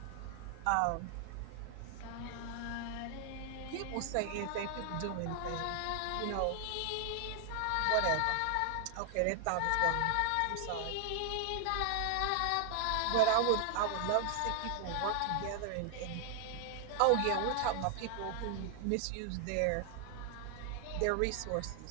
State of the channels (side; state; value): both; different; correlation 0.00